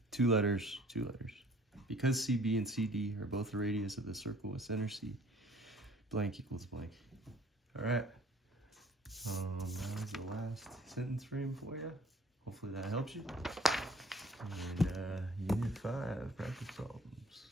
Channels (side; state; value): both; normal; correlation 0.54